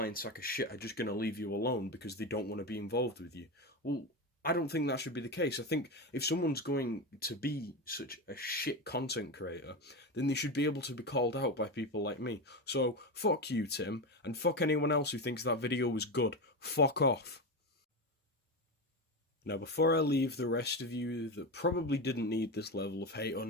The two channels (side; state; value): both; normal; correlation 0.17